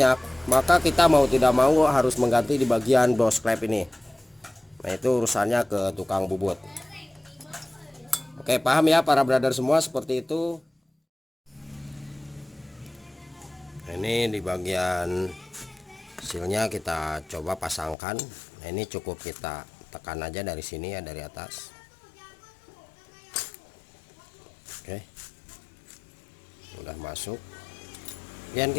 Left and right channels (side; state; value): right; drops out; at 17.9 s